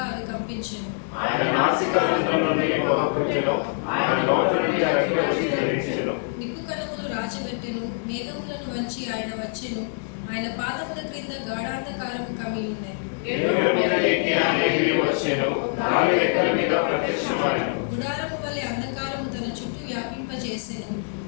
అవి కంపించెను. నిప్పు కణములు రాజబెట్టెను, మేఘములను వంచి ఆయన వచ్చెను. ఆయన పాదముల క్రింద గాఢాంధకారము కమ్మి ఉన్నది. గుడారము వలె అంధకారము తన చుట్టూ వ్యాపింపజేసెను.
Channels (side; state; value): right; silent; 62 dB below the other